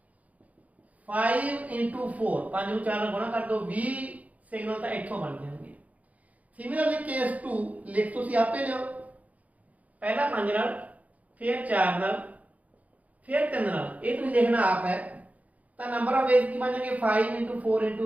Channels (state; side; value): late; left; 0.072 ms